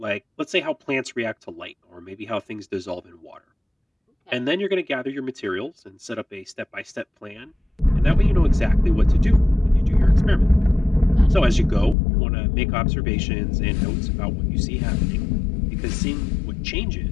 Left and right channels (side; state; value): right; drops out; at 12.0 s